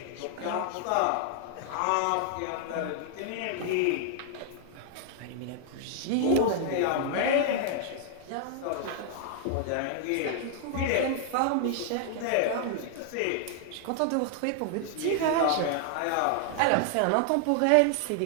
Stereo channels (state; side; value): different; both; correlation 0.00